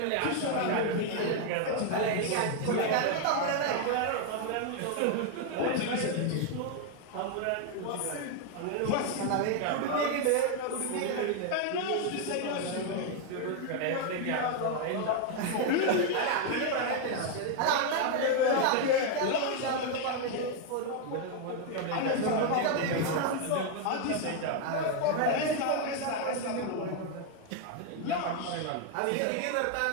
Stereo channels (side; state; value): both; different; correlation 0.01